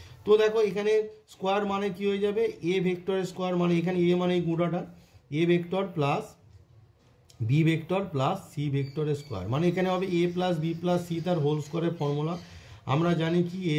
তো দেখো এখানে স্কোয়ার মানে কি হয়ে যাবে, এ ভেক্টরের স্কোয়ার মানে এখানে এ মানে এই গুঁড়াটা, A vector plus B vector plus C ভেক্টরের স্কোয়ার, মানে এখানে হবে A plus B plus C তার হোল স্কোয়ারের ফর্মুলা। আমরা জানি কি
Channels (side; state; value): both; identical; correlation 1.00